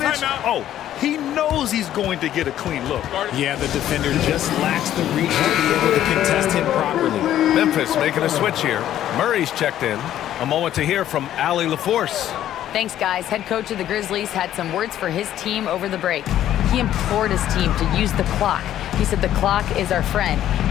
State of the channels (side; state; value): right; quieter; 11.9 dB